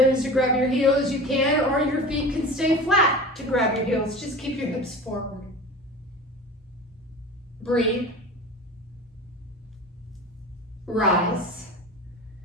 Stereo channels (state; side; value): normal; both; correlation 0.34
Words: to grab your heels, you can. Or your feet can stay flat to grab your heels. Just keep your hips forward. Breathe. Rise.